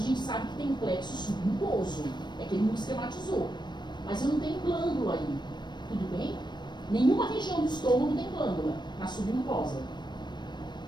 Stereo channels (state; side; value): late; right; 0.22 ms